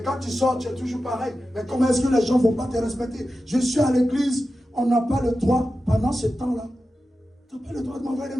quand tu sors, tu es toujours pareil. Mais comment est-ce que les gens ne vont pas te respecter? Je suis à l'église, on n'a pas le droit, pendant ce temps-là, tu n'as pas le droit de m'envoyer des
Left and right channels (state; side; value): normal; both; correlation 0.92